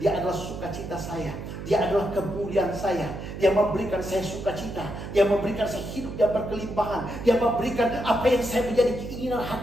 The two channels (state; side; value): noise; right; hum, 8 dB below the sound